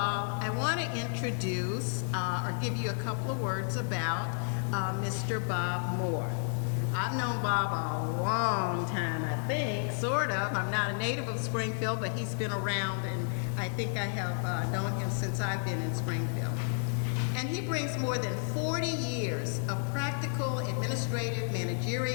I want to introduce or give you a couple of words about Mr. Bob Moore. I've known Bob a long time, I think, sort of. I'm not a native of Springfield, but he's been around, and I think I have known him since I've been in Springfield. And he brings more than 40 years of practical, administrative,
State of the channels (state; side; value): silent; right; 57 dB below the other